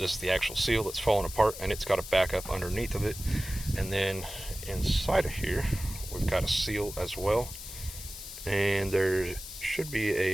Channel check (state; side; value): noise; left; hiss, 11 dB below the sound